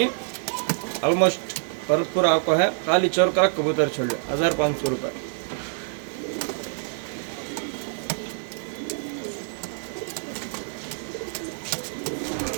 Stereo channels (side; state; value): left; silent; digital silence